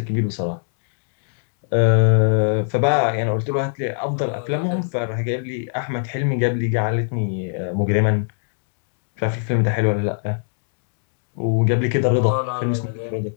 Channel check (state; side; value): silent; right; digital silence